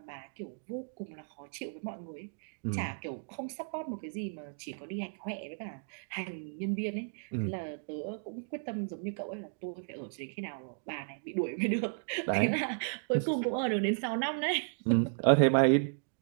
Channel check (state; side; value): silent; left; digital silence